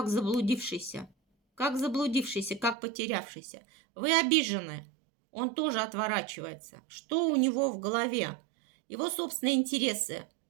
заблудившийся, как потерявшийся. Вы обижены. Он тоже отворачивается. Что у него в голове? Его собственные интересы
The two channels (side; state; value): left; drops out; at 2.8 s